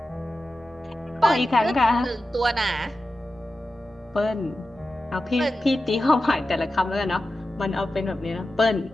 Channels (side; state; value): both; normal; correlation 0.93